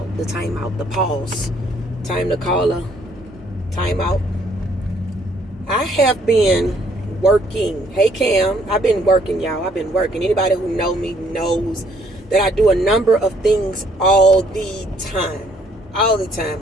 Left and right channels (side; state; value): both; normal; correlation 0.65